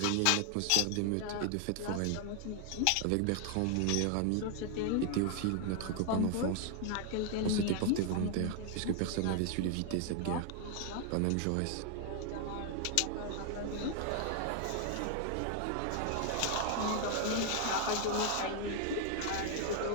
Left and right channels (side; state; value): both; different; correlation 0.00